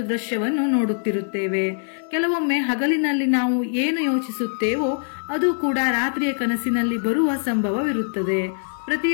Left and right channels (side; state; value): right; silent; digital silence